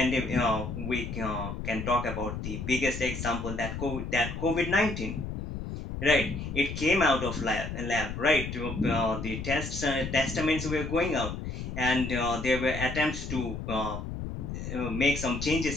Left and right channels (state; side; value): noise; left; rumble, 6 dB below the sound